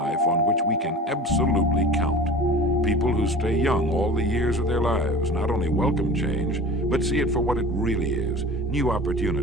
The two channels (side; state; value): both; normal; correlation 0.39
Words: on which we can absolutely count. People who stay young all the years of their lives not only welcome change, but see it for what it really is: new